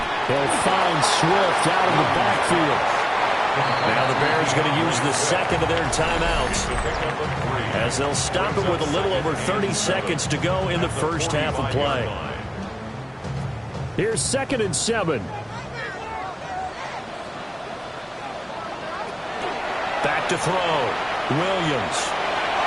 They'll find Swift out of the backfield. Now the Bears going to use the second of their timeouts as they'll stop it with a little over 30 seconds to go in the first half of play. Here's 2nd and 7. Back to throw. Williams.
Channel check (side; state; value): both; identical; correlation 1.00